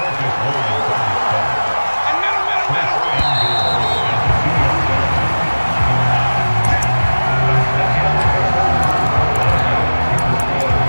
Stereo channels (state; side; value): inverted; both; correlation -1.00